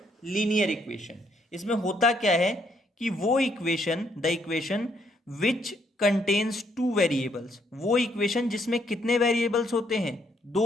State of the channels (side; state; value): both; normal; correlation 0.71